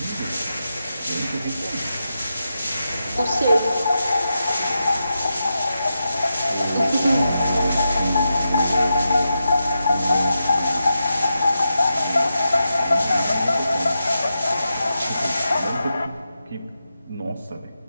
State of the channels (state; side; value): inverted; both; correlation -0.88